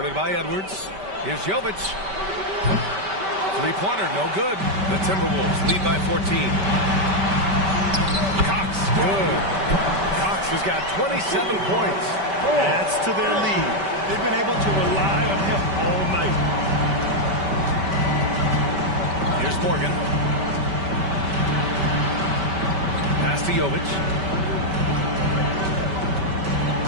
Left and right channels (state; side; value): late; left; 5.2 ms